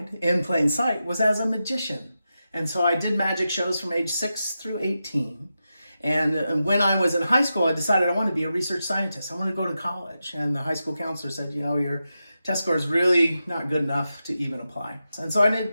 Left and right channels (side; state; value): both; inverted; correlation -0.90